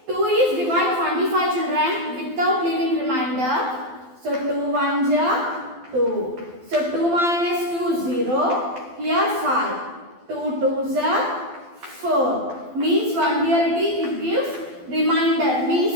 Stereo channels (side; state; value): left; late; 12 ms